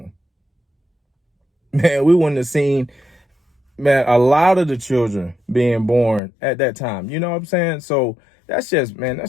Man, we wouldn't have seen, man, a lot of the children being born at that time. You know what I'm saying? So that's just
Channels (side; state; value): right; drops out; at 6.2 s